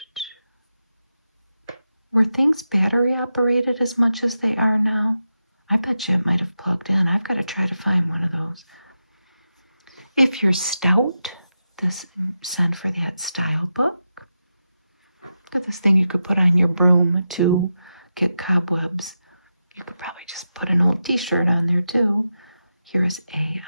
Were things battery operated as much as they are now? I bet you it might have plugged in. I've got to try to find one of those. If you're stout, send for that style book. Look at this thing you could put on your broom to get cobwebs. You could probably just put an old t-shirt on there too. Here's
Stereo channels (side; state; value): both; inverted; correlation -0.89